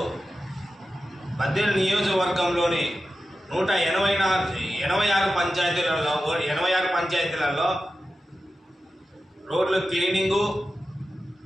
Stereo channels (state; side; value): normal; both; correlation 0.92